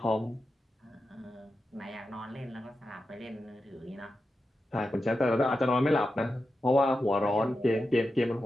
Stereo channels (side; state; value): both; normal; correlation 0.90